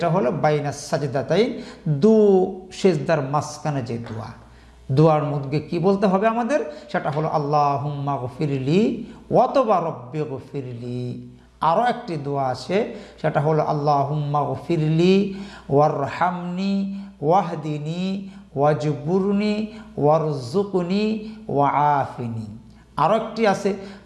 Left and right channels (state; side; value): identical; both; correlation 1.00